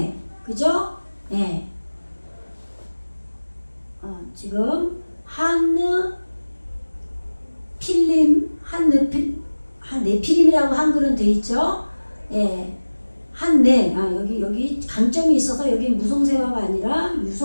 그죠? 네. 지금 네피림이라고 한글은 돼 있죠. 예. 여기 강점이 있어서 여기 무성세화가 아니라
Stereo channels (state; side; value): inverted; both; correlation -1.00